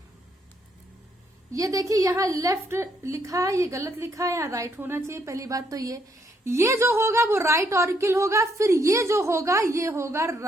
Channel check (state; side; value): normal; both; correlation 0.73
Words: ये देखिए यहाँ लेफ्ट लिखा है, ये गलत लिखा है, यहाँ राइट होना चाहिए। पहली बात तो ये जो होगा वो राइट ऑरिकल होगा, फिर ये जो होगा ये होगा